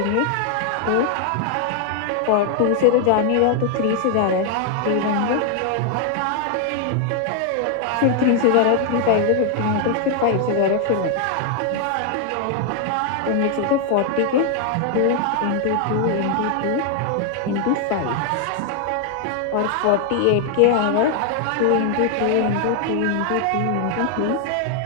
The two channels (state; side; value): different; both; correlation 0.00